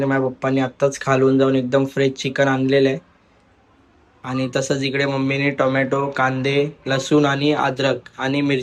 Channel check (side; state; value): both; identical; correlation 1.00